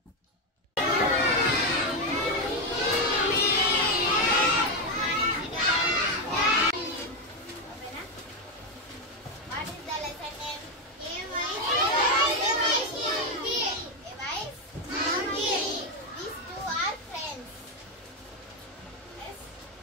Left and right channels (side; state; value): both; normal; correlation 0.07